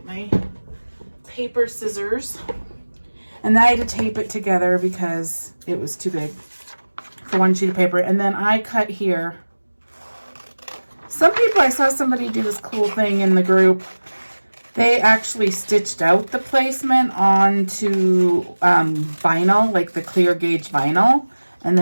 my paper scissors. And then I had to tape it together because it was too big for one sheet of paper. And then I cut here. Some people, I saw somebody do this cool thing in the group. They actually stitched out the placement onto vinyl, like the clear gauge vinyl. And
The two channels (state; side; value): inverted; both; correlation -1.00